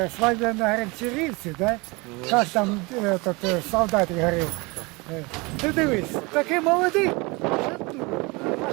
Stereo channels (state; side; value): quieter; left; 26.1 dB